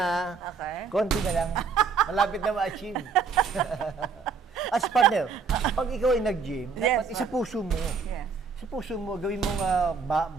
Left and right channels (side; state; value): left; quieter; 5.3 dB